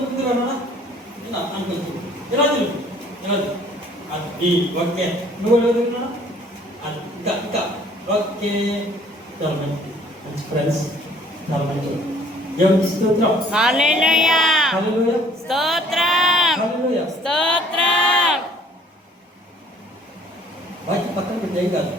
ముందుకు రానా అనుకోవచ్చు. ఇలా తెలుసు, ఇలా అది ఓకే. నువ్వు ఎదుగుతున్నా అది ఇంకా ఇంకా ఓకే. చాలా మంచి మంచి ఫ్రెండ్స్, చాలా మంచి. దేవునికి స్తోత్రం. హల్లెలూయా. హల్లెలూయా. స్తోత్రం. హల్లెలూయా. స్తోత్రం. వాక్య పక్కన పెట్టి ఏం కాదు,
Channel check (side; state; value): both; normal; correlation 0.57